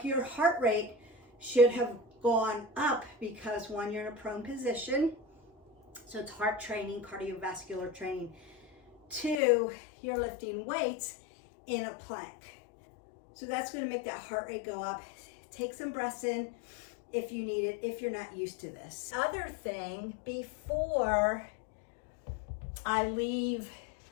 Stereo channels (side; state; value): right; drops out; at 9.4 s